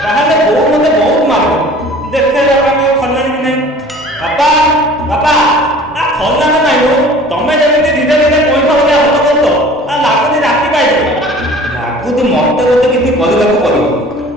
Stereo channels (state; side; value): normal; both; correlation 0.46